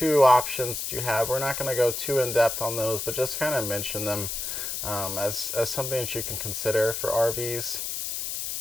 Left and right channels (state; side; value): noise; left; hiss, 4 dB below the sound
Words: options that you have. We're not going to go too in depth on those, but just kind of mention them as something that you can consider for RVs.